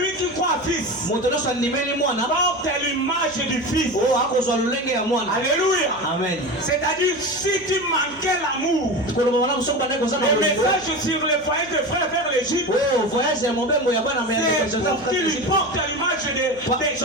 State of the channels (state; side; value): noise; right; hum, 22 dB below the sound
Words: qui croit à fils. Porte l'image du fils. Alléluia. Amen. C'est-à-dire si tu manquais l'amour, le message sur le foyer de frères vers l'Égypte, c'est pour qu'il porte l'image de